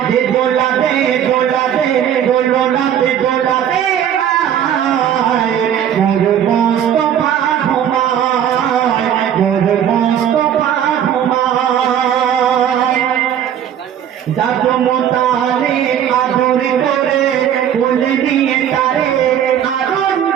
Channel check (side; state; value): left; quieter; 9.6 dB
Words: দোলাতে দোলাতে দোলনাতে দোলাতে মোর মোস্তফা ঘুমায়, মোর মোস্তফা ঘুমায়। দাদু মোতালে আদর করে বলে দিয়ে তারে